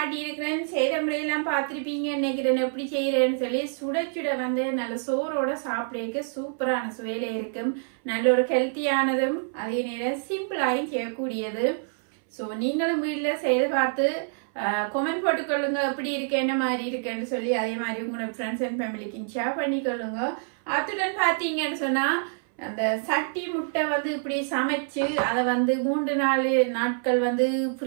இருக்கிறேன். செய்த முறையெல்லாம் பார்த்திருப்பீங்க நினைக்கிறேன். எப்படி செய்யறேன்னு சொல்லி சுட சுட வந்து நல்ல சோறோட சாப்பிட சூப்பரான சுவையில இருக்கும். நல்ல ஒரு ஹெல்த்தியானதும் அதே நேரம் சிம்பிளாயும் செய்யக்கூடியது. ஸோ நீங்களும் வீட்டுல செய்து பார்த்து கமெண்ட் போட்டுக்கொள்ளுங்க எப்படி இருக்கு, என்ன மாதிரி இருக்குன்னு சொல்லி. அதே மாதிரி உங்களோட ஃப்ரெண்ட்ஸ் அண்ட் ஃபேமிலிக்கு ஷேர் பண்ணிக்கொள்ளுங்க. அத்துடன் பாத்தீங்கன்னு சொன்னா அந்த சட்டி முட்டை வந்து இப்படி சமைச்சு அதை வந்து 3-4 நாட்கள் வந்து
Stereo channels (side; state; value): left; silent; 60 dB below the other